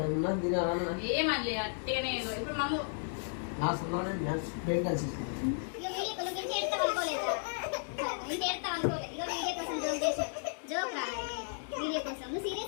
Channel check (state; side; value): silent; right; digital silence